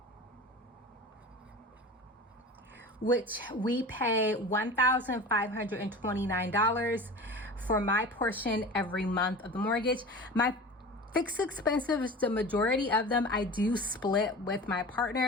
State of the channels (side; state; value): both; normal; correlation 0.35